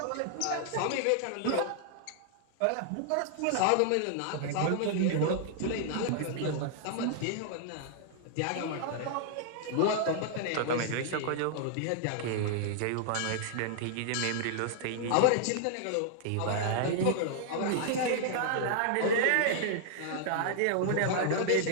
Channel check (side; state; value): both; different; correlation -0.01